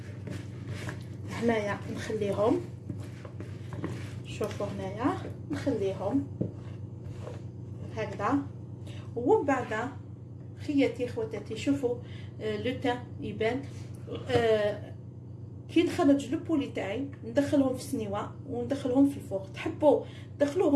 هنايا نخليهم، شوفوا هنايا نخليهم هكذا. ومن بعد خياتي خواتاتي شوفوا لو تان يبان. كي نخرج لو بولي تاعي ندخلهم في السنيوه وندخلهم في الفوق. تحبوا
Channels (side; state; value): both; identical; correlation 1.00